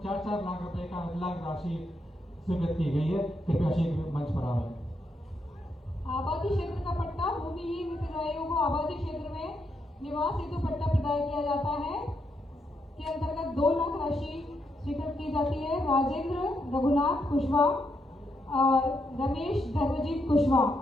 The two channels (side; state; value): both; normal; correlation 0.80